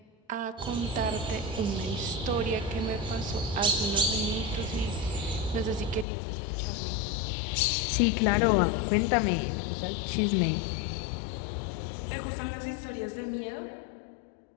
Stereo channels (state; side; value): drops out; right; at 6.1 s